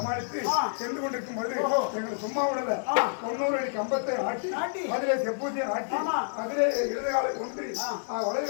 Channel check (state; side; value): silent; right; digital silence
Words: சென்று கொண்டிருக்கும் போது எங்களை சும்மா விடல 90 அடி கம்பத்தை ஆட்டி அதிலே செப்பூசியை ஆட்டி அதிலே இடதுகாலை ஒன்றி